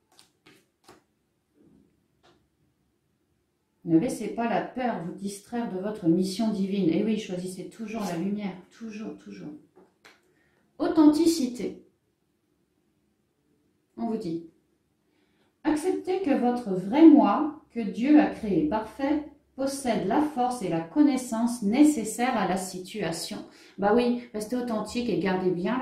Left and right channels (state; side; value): identical; both; correlation 1.00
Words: Ne laissez pas la peur vous distraire de votre mission divine. Et oui, choisissez toujours la lumière. Toujours, toujours. Authenticité. On vous dit, acceptez que votre vrai moi, que Dieu a créé parfait, possède la force et la connaissance nécessaires à la situation. Bah oui, restez authentique et gardez bien